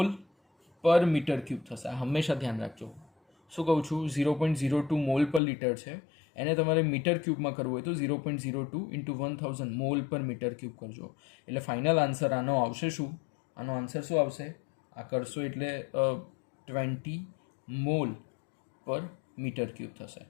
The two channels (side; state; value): right; drops out; at 5.4 s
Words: પર મીટર ક્યુબ થશે. આ હંમેશા ધ્યાન રાખજો. શું કહું છું? 0.02 મોલ પર લીટર છે, એને તમારે મીટર ક્યુબમાં કરવું હોય તો 0.02 ઇન્ટુ 1000 મોલ પર મીટર ક્યુબ કરજો. એટલે ફાઇનલ આન્સર આનો આવશે શું? આનો આન્સર શું આવશે? આ કરશો એટલે 20 મોલ પર મીટર ક્યુબ થશે.